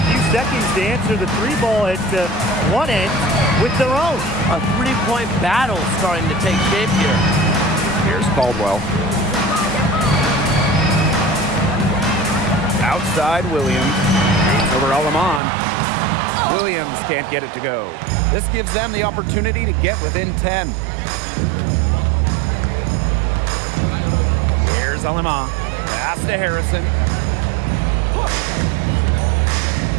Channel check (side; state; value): left; drops out; at 15.4 s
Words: seconds to answer the 3 ball at one end with their own. A 3-point battle starting to take shape here. Here's Caldwell. Outside Williams. Over Alamon. Williams can't get it to go. This gives them the opportunity to get within 10. Here's Alamon. Pass to Harrison.